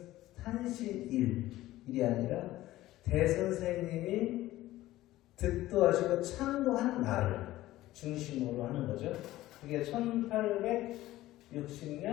탄신일이 아니라 대선생님이 득도하시고 창도한 날을 중심으로 하는 거죠. 그게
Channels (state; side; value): quieter; right; 16.0 dB